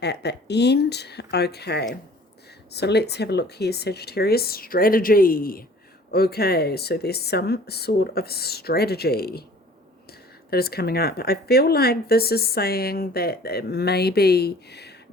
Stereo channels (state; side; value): normal; both; correlation 0.50